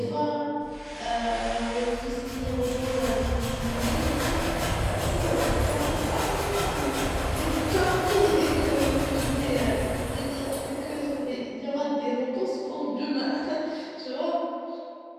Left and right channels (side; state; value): both; identical; correlation 1.00